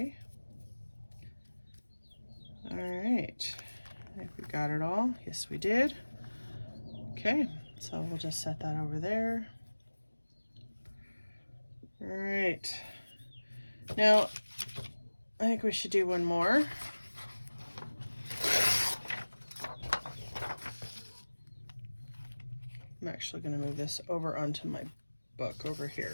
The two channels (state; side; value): inverted; both; correlation -1.00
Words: All right, I think we got it all. Yes, we did. Okay, so we'll just set that over there. All right, now I think we should do one more. I'm actually going to move this over onto my book over